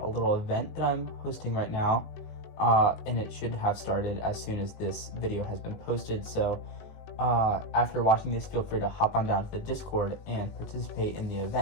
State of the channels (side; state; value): right; late; 19 ms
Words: a little event that I'm hosting right now, and it should have started as soon as this video has been posted, so after watching this, feel free to hop on down to the Discord and participate in the